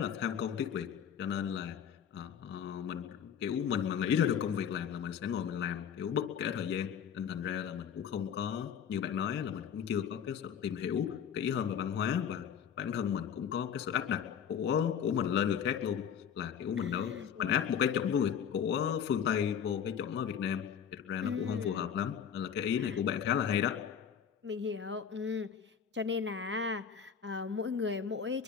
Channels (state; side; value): quieter; right; 7.9 dB